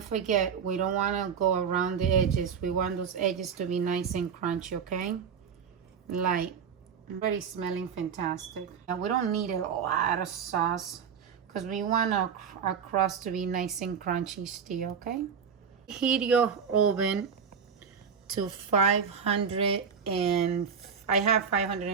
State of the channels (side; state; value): left; quieter; 6.8 dB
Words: forget, we don't wanna go around the edges. We want those edges to be nice and crunchy, okay? Like, already smelling fantastic. And we don't need a lot of sauce because we want our crust to be nice and crunchy still, okay? Heat your oven to 500 and I have